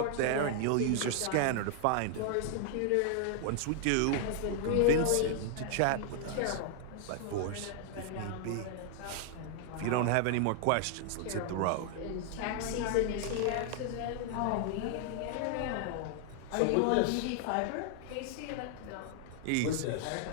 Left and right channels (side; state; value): both; different; correlation 0.00